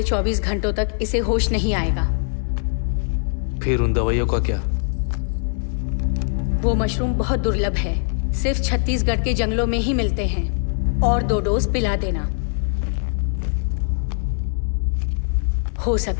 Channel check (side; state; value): right; silent; 64 dB below the other